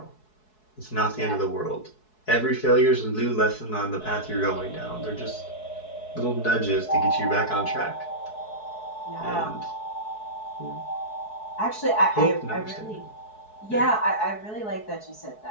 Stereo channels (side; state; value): right; late; 4.7 ms